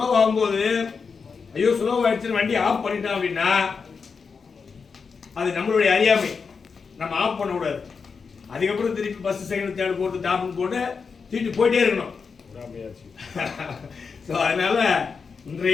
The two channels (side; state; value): right; quieter; 5.4 dB